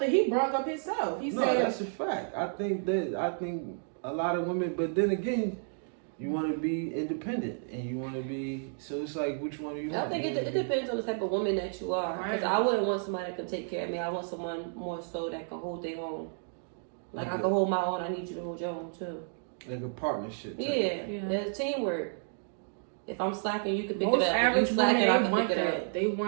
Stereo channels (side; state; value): left; silent; digital silence